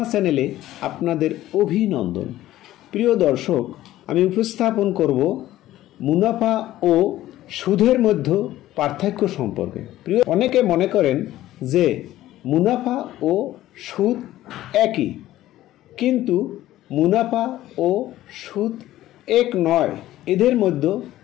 চ্যানেলে আপনাদের অভিনন্দন। প্রিয় দর্শক, আমি উপস্থাপন করব মুনাফা ও সুদের মধ্যে পার্থক্য সম্পর্কে। অনেকে মনে করেন যে মুনাফা ও সুদ একই, কিন্তু মুনাফা ও সুদ এক নয়। এদের মধ্যে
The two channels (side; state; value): right; quieter; 14.6 dB